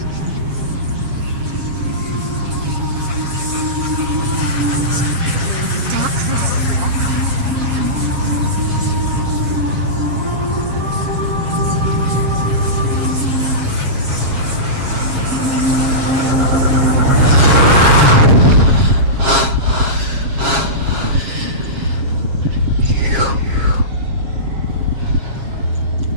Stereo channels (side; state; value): left; late; 7.4 ms